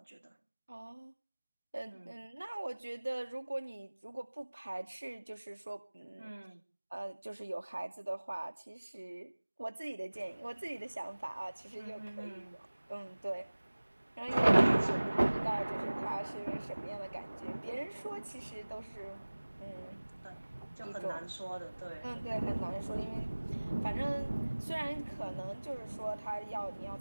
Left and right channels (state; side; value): inverted; both; correlation -1.00